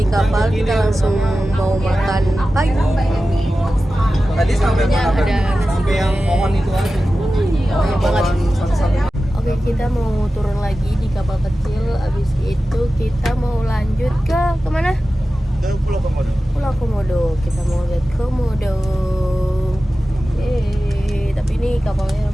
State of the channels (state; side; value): normal; both; correlation 0.94